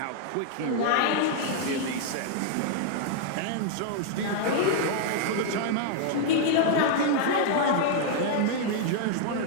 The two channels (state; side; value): different; both; correlation -0.01